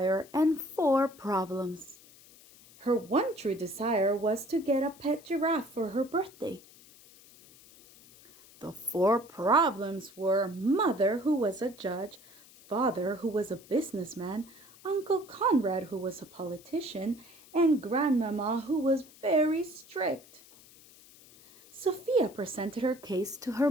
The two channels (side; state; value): left; noise; hiss, 23 dB below the sound